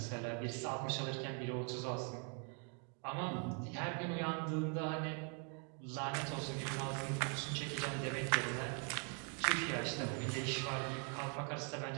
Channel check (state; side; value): quieter; left; 37.4 dB